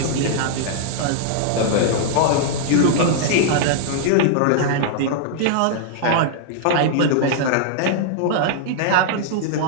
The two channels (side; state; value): both; different; correlation -0.01